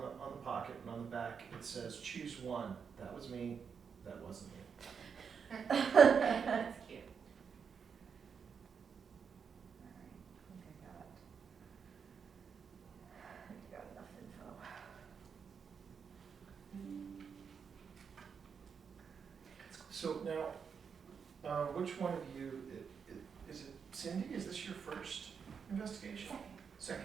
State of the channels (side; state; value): left; quieter; 6.4 dB